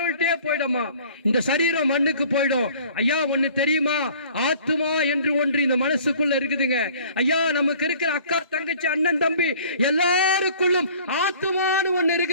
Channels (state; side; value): inverted; both; correlation -0.51